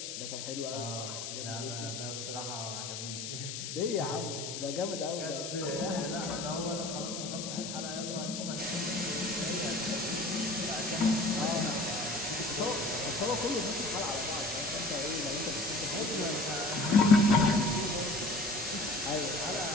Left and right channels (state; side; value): noise; left; hiss, 6 dB below the sound